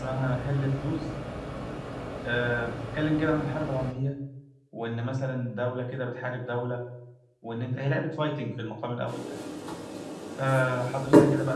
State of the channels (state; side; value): identical; both; correlation 1.00